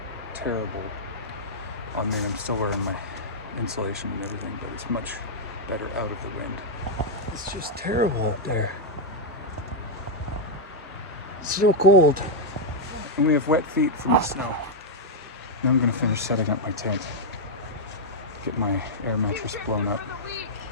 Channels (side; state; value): both; normal; correlation -0.04